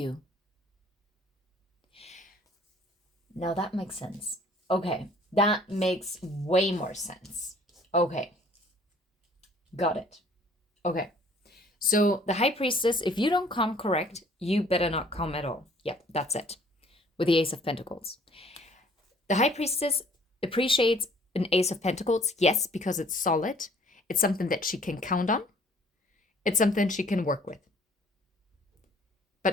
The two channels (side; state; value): both; normal; correlation 0.56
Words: Now that makes sense. Okay, that makes way more sense. Okay, got it. Okay, so the high priestess, if you don't come correct, you better not come at all. Yep, that's it. With the Ace of Pentacles. The high priestess appreciates an Ace of Pentacles, yes, because it's solid. It's something that she can count on. It's something she can work with.